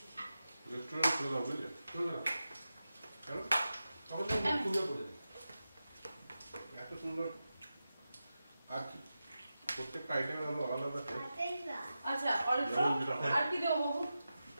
রেস্টুরেন্ট খুলে দাও বুঝলে? শোনো না, কেন? তখন তো মুখ খুলে পড়ে যায়। এত সুন্দর আর কি প্রত্যেকটা আইটেমের আলাদা আলাদা টেস্ট। আচ্ছা অল্প আর কি দেবো বাবু?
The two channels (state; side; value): inverted; both; correlation -0.92